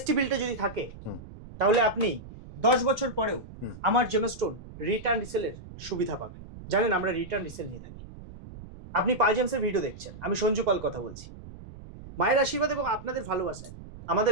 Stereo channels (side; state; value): right; noise; rumble, 15 dB below the sound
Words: বিলটা যদি থাকে তাহলে আপনি 10 বছর পরেও আমার জেমস্টোন রিটার্ন রিসেলের সুবিধা পাবেন। জানেন আমরা রিটার্ন রিসেল নিয়ে থাকি। আপনি পাল জেমসের ভিডিও দেখছেন, আমি সঞ্জু পাল কথা বলছি। মায়ের আশীর্বাদ এবং আপনাদের ভালোবাসায়